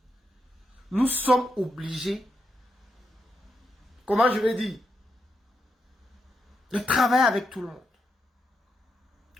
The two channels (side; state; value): both; normal; correlation 0.83